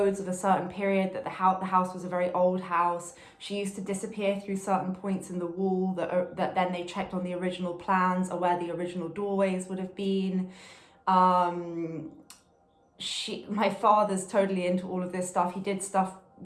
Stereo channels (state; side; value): identical; both; correlation 1.00